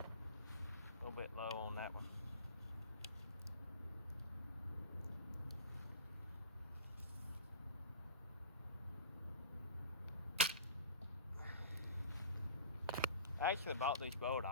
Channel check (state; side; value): inverted; both; correlation -0.36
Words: A little bit low on that one. I actually bought this bow at